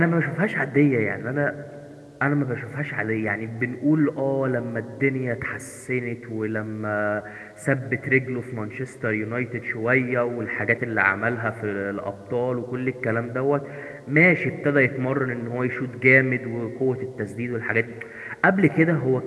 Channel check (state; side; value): identical; both; correlation 1.00